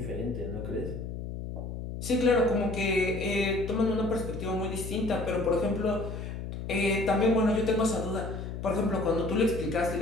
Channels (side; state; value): left; noise; hum, 7 dB below the sound